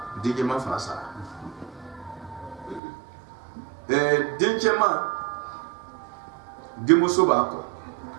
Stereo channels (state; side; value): drops out; left; at 2.8 s